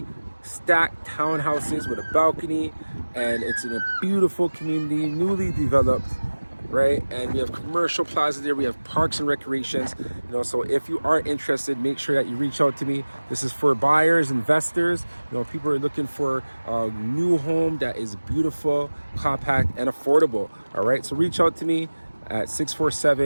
stacked townhouses with a balcony, and it's in a beautiful community, newly developed, right? And we have commercial plaza there. We have parks and recreations. So if you are interested, make sure that you reach out to me. This is for buyers, investors. People are looking for a new home that is beautiful, compact, and affordable. All right, so reach out to me at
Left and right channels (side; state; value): both; inverted; correlation -1.00